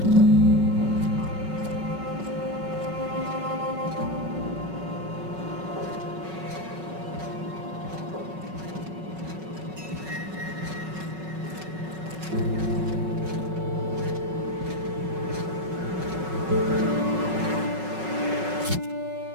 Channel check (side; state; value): left; late; 5.4 ms